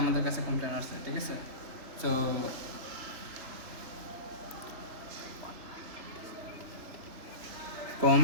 কাছে কমপ্লেন আসছে। ঠিক আছে? তো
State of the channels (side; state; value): left; late; 3.4 ms